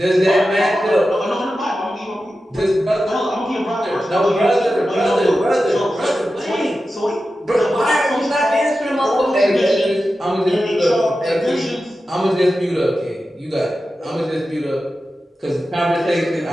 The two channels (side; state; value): both; normal; correlation 0.92